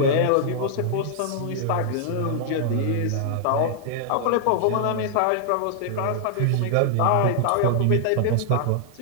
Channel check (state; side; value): different; both; correlation -0.01